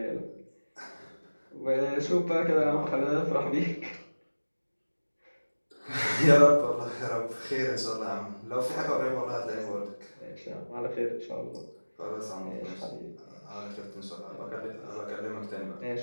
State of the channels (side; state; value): both; inverted; correlation -1.00